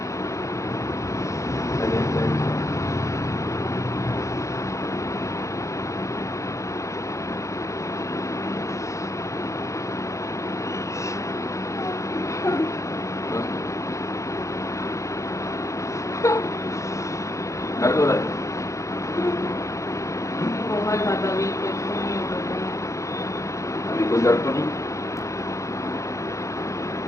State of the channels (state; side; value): late; right; 0.15 ms